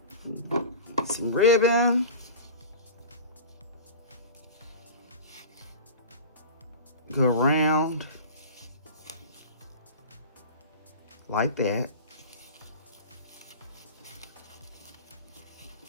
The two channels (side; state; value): both; inverted; correlation -0.35